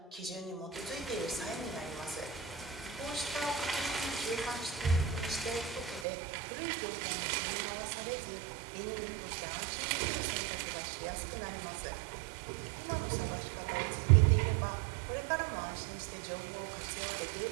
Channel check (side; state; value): left; drops out; at 6.1 s